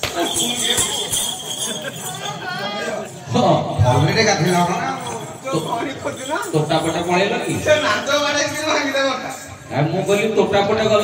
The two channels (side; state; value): both; identical; correlation 1.00